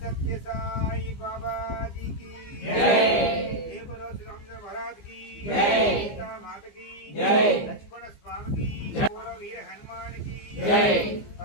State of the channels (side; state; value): right; late; 15 ms